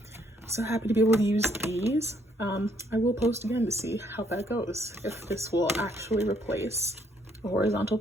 happy to be able to use these. I will post again to see how that goes, if this will actually replace a horizontal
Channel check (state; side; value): normal; both; correlation 0.69